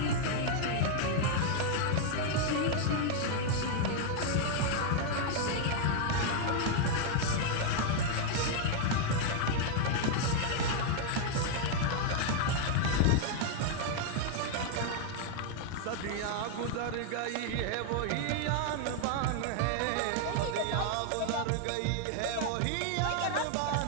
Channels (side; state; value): both; different; correlation 0.00